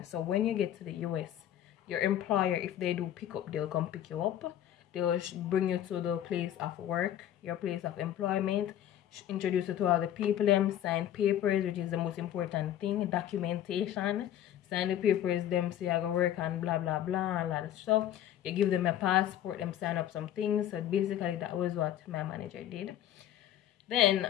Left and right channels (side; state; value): right; quieter; 11.5 dB